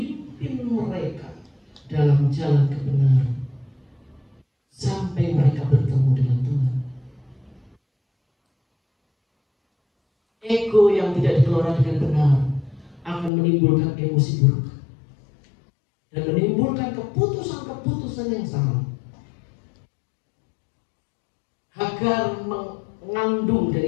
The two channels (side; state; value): right; drops out; at 13.3 s